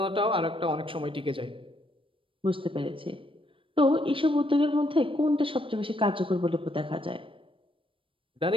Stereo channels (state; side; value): late; left; 0.25 ms